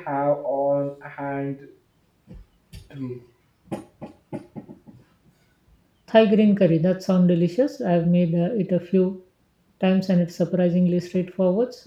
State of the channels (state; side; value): identical; both; correlation 1.00